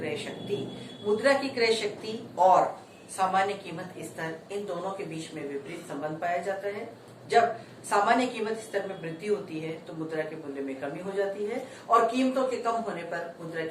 शक्ति. मुद्रा की क्रय शक्ति और सामान्य कीमत स्तर, इन दोनों के बीच में विपरीत संबंध पाया जाता है. जब सामान्य कीमत स्तर में वृद्धि होती है तो मुद्रा के मूल्य में कमी हो जाती है और कीमतों के कम होने पर मुद्रा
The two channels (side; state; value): both; identical; correlation 1.00